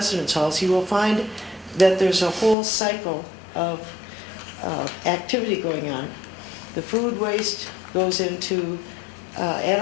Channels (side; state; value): right; drops out; at 2.6 s